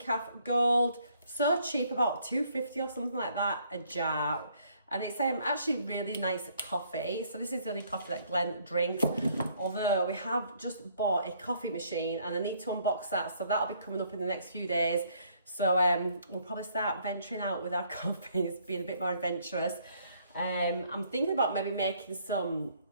Gold. So cheap, about £2.50 or something like that a jar, and it's actually really nice coffee. So this is the only coffee that Glenn drinks, although we have just bought a coffee machine and I need to unbox that, so that'll be coming up in the next few days. So we'll probably start venturing out with our coffees, being a bit more adventurous. I'm thinking about maybe making some,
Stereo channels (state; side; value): inverted; both; correlation -0.65